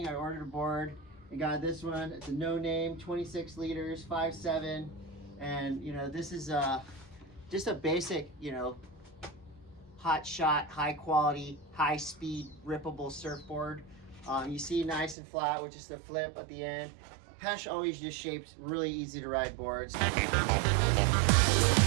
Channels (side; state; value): left; drops out; at 15.2 s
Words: I ordered a board and got this one. It's a no name, 26 liters, 5'7". And, you know, this is just a basic, you know, hot shot, high quality, high speed, rippable surfboard. You see nice and flat with just a flip at the end. Pesh always just shaped really easy to ride boards.